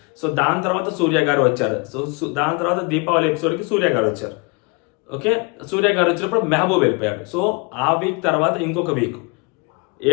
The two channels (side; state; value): right; quieter; 29.8 dB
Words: సో దాని తర్వాత సూర్య గారు వచ్చారు, సో దాని తర్వాత దీపావళి ఎపిసోడ్కి సూర్య గారు వచ్చారు. ఓకే, సూర్య గారు వచ్చినప్పుడు మెహబూబ్ వెళ్ళిపోయాడు. సో ఆ వీక్ తర్వాత ఇంకొక వీక్